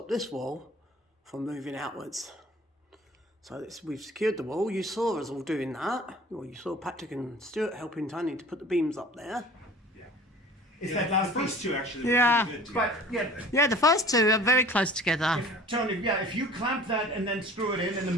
from moving outwards. So we've secured the wall. You saw us all doing that. Well, you saw Patrick and Stuart helping Tony to put the beams up there. Yeah. Is that last first two actually? Yeah. But Yeah, the first two are very close together. Tony, if you clamp that and then screw it in the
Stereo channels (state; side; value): normal; both; correlation 0.45